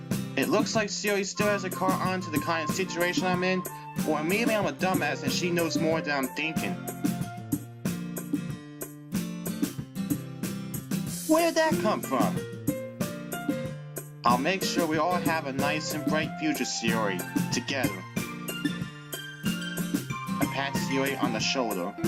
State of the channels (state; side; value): identical; both; correlation 1.00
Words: It looks like Sayori still has a car on to the kind of situation I'm in, or maybe I'm a dumbass and she knows more than I'm thinking. Where did that come from? I'll make sure we all have a nice and bright future, Sayori, together. I pat Sayori on the shoulder.